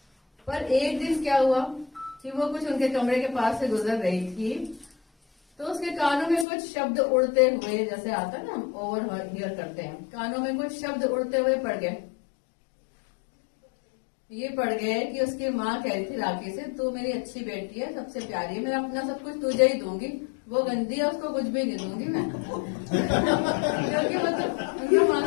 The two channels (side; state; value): right; drops out; at 6.5 s